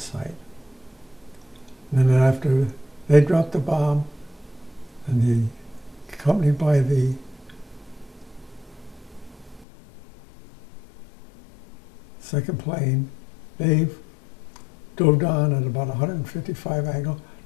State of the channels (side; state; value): right; drops out; at 9.7 s